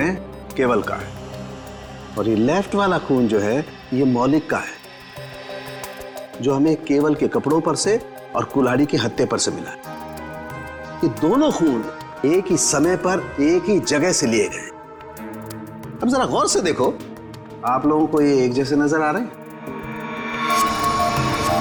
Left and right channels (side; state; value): both; identical; correlation 1.00